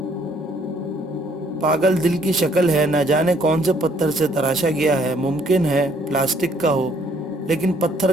پاگل دل کی شکل ہے، نہ جانے کون سے پتھر سے تراشا گیا ہے، ممکن ہے پلاسٹک کا ہو، لیکن پتھر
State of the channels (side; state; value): both; normal; correlation 0.64